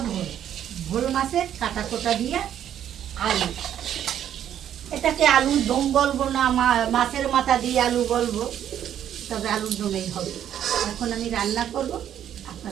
ভোল, ভোল মাছের কাটা কোটা দিয়ে আলু। এটাকে আলুর দম বলবো না, মাছের মাথা দিয়ে আলু বলবো, তবে আলুর দমেই হবে। এখন আমি রান্না করব,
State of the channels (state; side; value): quieter; left; 10.3 dB